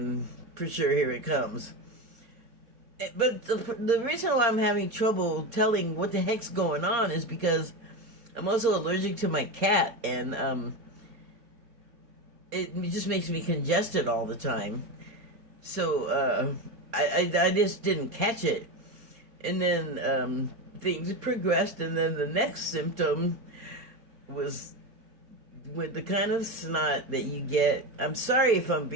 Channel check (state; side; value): late; left; 4.2 ms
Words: for sure here it comes. But the reason why I'm having trouble telling what the heck's going on is because I'm also allergic to my cat, and it just makes me congested all the time. So I just didn't catch it. And then things progressed, and then the next symptom was with the kind of snot that you get. I'm sorry if I'm